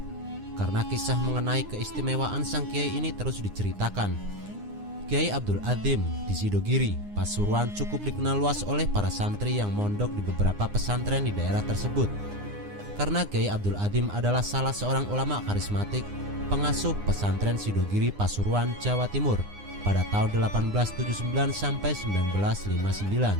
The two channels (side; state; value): left; late; 9.8 ms